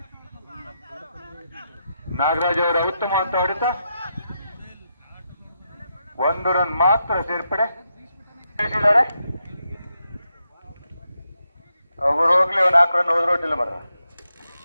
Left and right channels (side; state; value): both; inverted; correlation -0.84